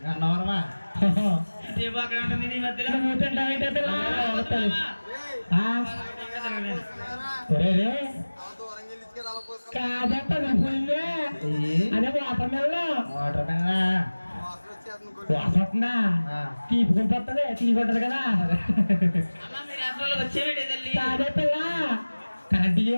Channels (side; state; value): both; inverted; correlation -1.00